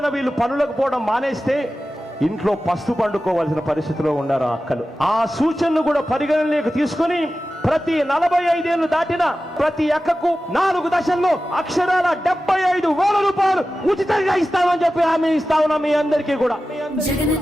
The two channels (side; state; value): both; normal; correlation 0.94